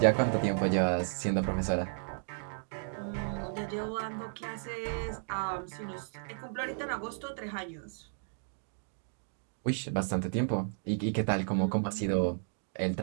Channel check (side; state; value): left; silent; digital silence